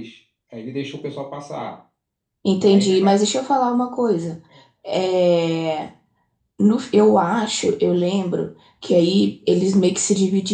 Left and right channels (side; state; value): both; identical; correlation 1.00